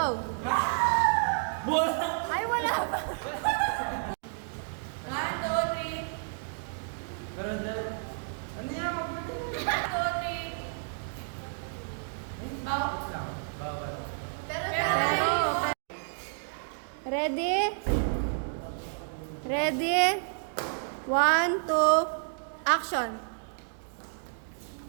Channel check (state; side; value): silent; left; digital silence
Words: Ay, wala pa. Pero dahil, ano yan? Magpunta na. Ay, bawal lang. Bawal. Pero, ready? Ready? 1, 2, action.